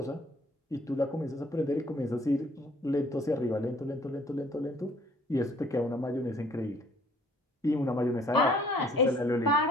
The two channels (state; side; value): normal; both; correlation 0.58